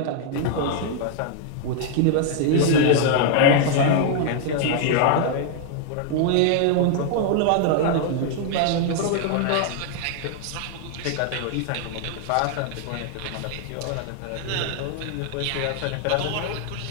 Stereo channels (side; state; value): both; different; correlation 0.00